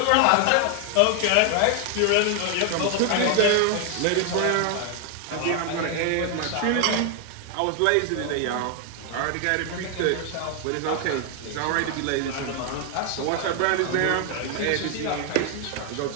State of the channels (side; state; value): both; different; correlation 0.00